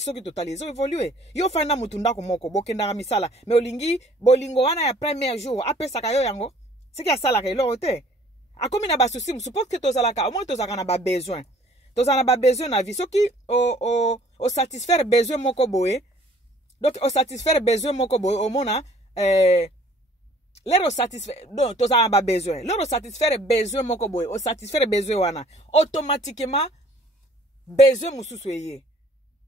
ki totalize évoluer yo fanda mutu ndako moko bokenda misala mais olingi bolingo wana ya premier jour apesa ka yo yango siki asala ka elo te akomi na ba souci suppose que tozalaka au moins tozaka na ba besoin tozana ba besoin na vie soki o satisfaire besoin moko boye donc o satisfaire besoin moko boye au mona lero satisfaire donc tozana ba besoin lero satisfaire besoin moko boye o satisfaire besoin wana automatiquement besoin mususu eye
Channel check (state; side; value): normal; both; correlation 0.56